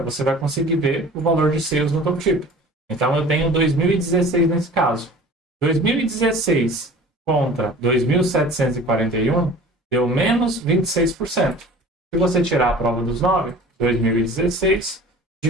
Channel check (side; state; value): both; normal; correlation 0.43